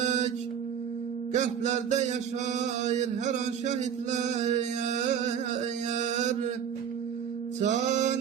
qəlblərdə yaşayır hər an şəhidlər. Can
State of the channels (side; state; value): left; quieter; 8.3 dB